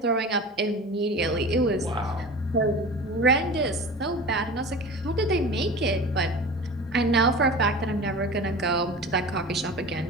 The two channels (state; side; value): normal; both; correlation 0.35